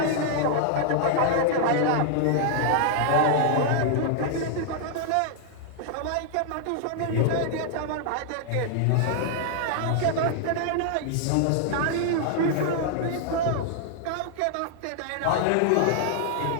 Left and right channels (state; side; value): different; both; correlation -0.01